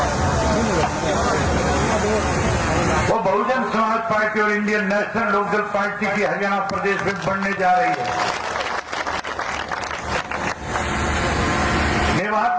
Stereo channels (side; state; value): both; identical; correlation 1.00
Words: वो बहुजन समाज पार्टी और इंडियन नेशनल लोकदल पार्टी की हरियाणा प्रदेश में बनने जा रही है। मेवात